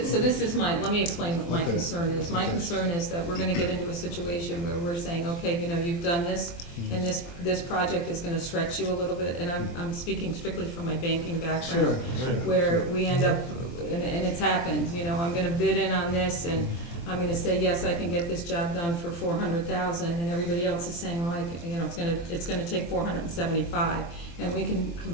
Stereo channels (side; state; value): right; late; 23 ms